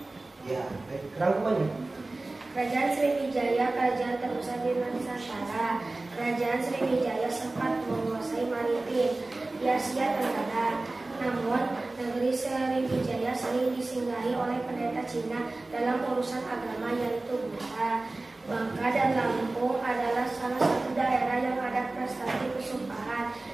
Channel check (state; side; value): quieter; left; 3.1 dB